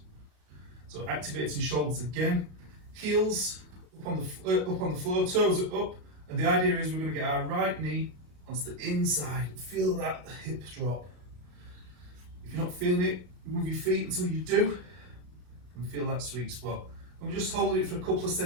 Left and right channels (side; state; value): left; late; 34 ms